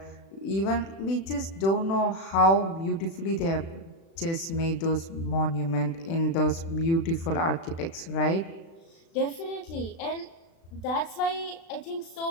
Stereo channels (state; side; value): late; right; 36 ms